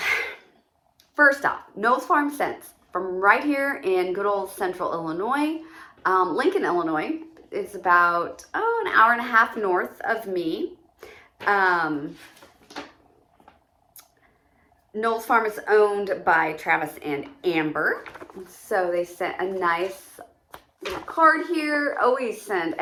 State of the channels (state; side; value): identical; both; correlation 1.00